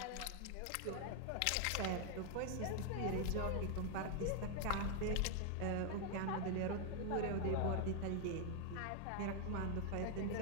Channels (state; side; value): different; both; correlation 0.00